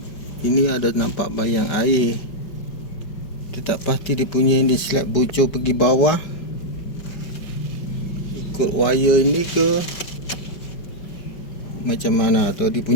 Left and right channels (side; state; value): right; late; 5.1 ms